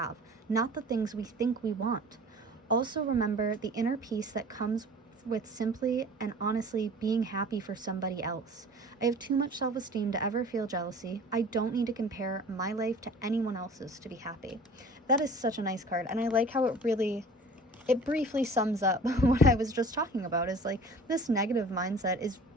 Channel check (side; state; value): both; normal; correlation 0.44